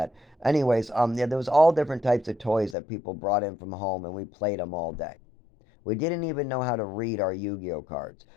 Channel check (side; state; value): right; drops out; at 2.8 s